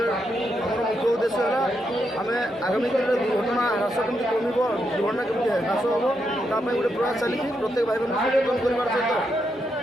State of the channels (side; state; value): both; normal; correlation 0.82